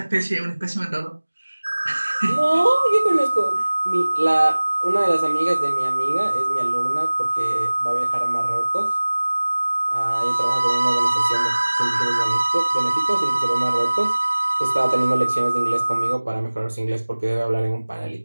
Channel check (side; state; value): both; inverted; correlation -1.00